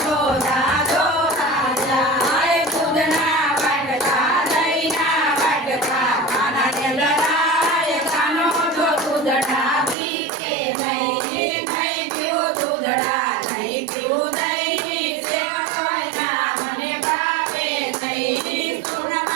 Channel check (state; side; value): drops out; left; at 10.0 s